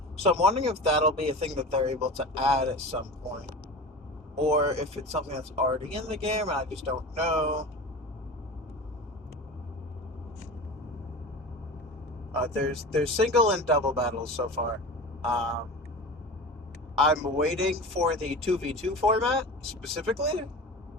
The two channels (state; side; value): normal; both; correlation 0.31